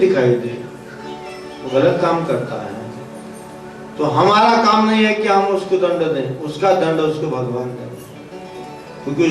दे, वो गलत काम करता है, तो हमारा काम नहीं है कि हम उसको दंड दें, उसका दंड उसको भगवान दें, क्योंकि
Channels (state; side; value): identical; both; correlation 1.00